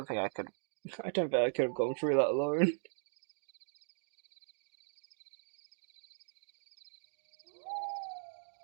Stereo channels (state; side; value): silent; left; digital silence